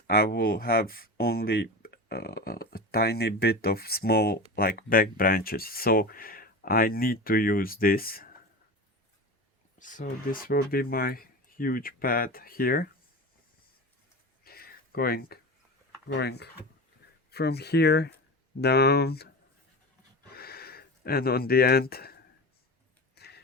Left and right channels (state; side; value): normal; both; correlation 0.27